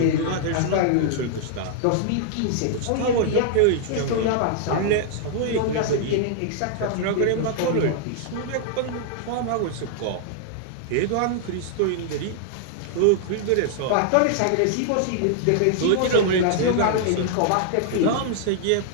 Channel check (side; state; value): both; different; correlation -0.01